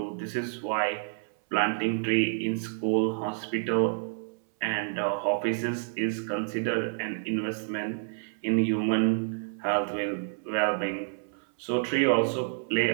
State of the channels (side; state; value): left; silent; 59 dB below the other